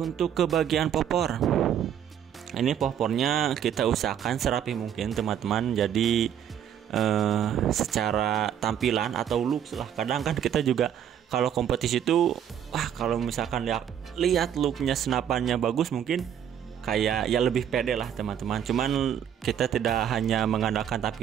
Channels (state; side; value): quieter; left; 9.4 dB